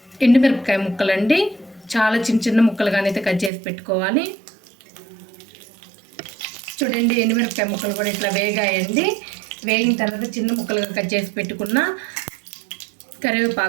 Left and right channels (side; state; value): left; drops out; at 3.5 s